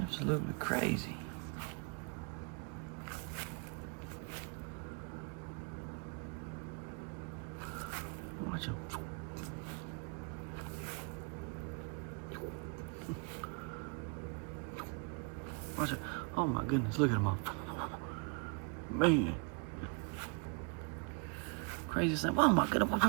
Absolutely crazy. Watch them. Watch it. Oh my goodness, look at them all. Man. Crazy thing. Oh my goodness.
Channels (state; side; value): quieter; left; 36.0 dB